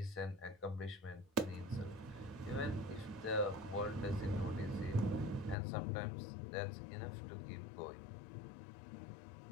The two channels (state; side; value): drops out; right; at 5.6 s